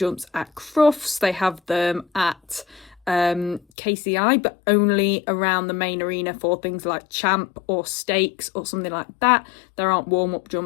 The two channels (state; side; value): drops out; right; at 3.6 s